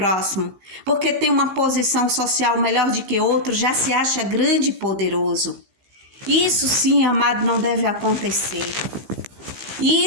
porque tem uma posição social melhor do que outro, já se acha grande e poderoso. Isso sim, amado, não deve acontecer.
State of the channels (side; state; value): left; late; 15 ms